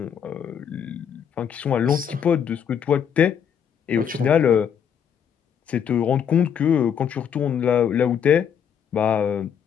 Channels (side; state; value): right; quieter; 8.1 dB